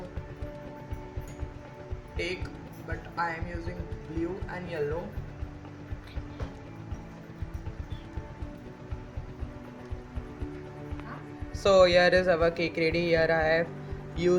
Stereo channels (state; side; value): identical; both; correlation 1.00